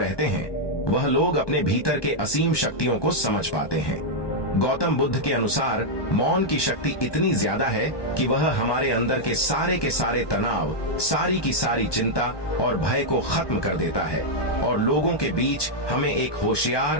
हैं वह लोग अपने भीतर के असीम शक्तियों को समझ पाते हैं। गौतम बुद्ध के अनुसार मौन की शक्ति इतनी ज्यादा है कि वह हमारे अंदर के सारे तनाव, सारी की सारी चिंता और भय को खत्म कर देता है और लोगों के बीच हमें एक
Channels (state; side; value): late; right; 1.2 ms